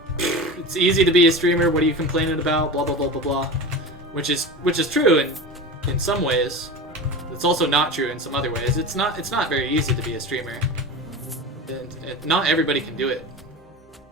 it's easy to be a streamer, what are you complaining about, blah blah blah blah blah, which is true in some ways. It's also not true in some other ways. It's not very easy to be a streamer, and not everybody can do it.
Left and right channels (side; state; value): both; normal; correlation 0.28